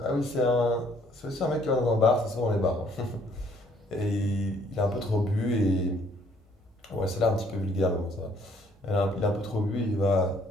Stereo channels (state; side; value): normal; both; correlation 0.63